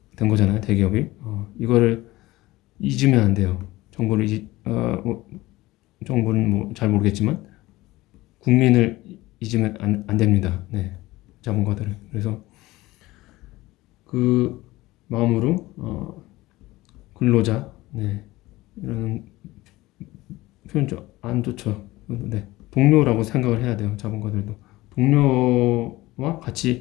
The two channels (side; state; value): right; quieter; 18.7 dB